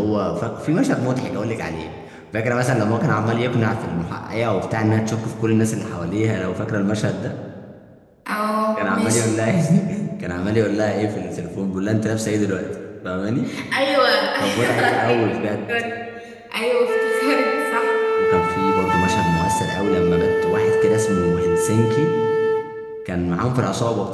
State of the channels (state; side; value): identical; both; correlation 1.00